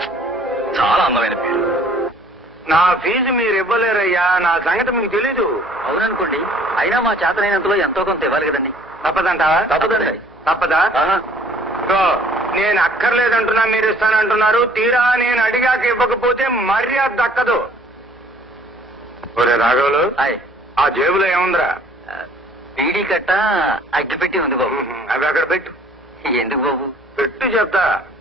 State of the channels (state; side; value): noise; left; hum, 29 dB below the sound